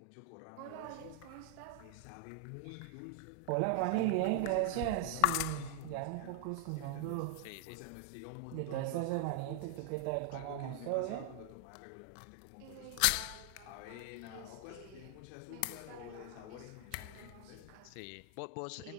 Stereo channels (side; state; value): both; different; correlation 0.00